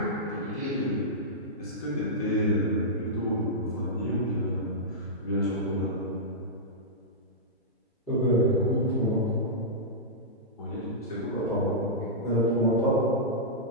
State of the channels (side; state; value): both; normal; correlation -0.13